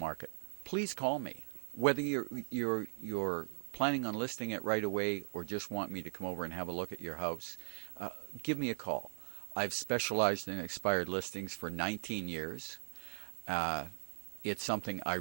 please call me. Whether you're planning on listing it right away or just want me to come over and have a look at your house, give me a call. I've specialized in expired listings for 19 years. It's something I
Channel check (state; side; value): silent; left; digital silence